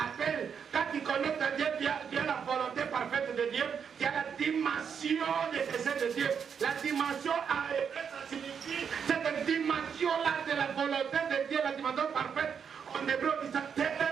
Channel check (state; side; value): quieter; left; 7.0 dB